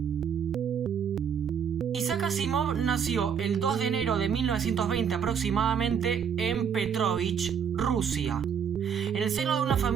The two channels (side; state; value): left; quieter; 7.4 dB